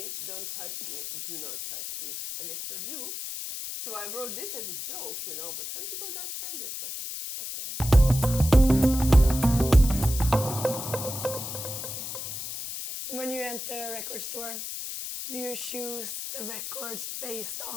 Don't touch me. Do not touch me. And they still do. So I wrote this as a joke, you know, but some people got offended, but fuck them. When you enter a record store, do you choose the records based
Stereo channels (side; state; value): left; noise; hiss, 7 dB below the sound